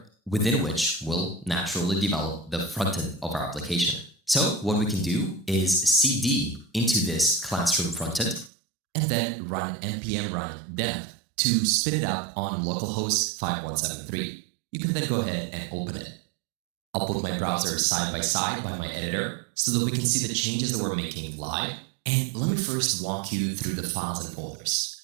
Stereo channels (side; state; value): left; drops out; at 8.5 s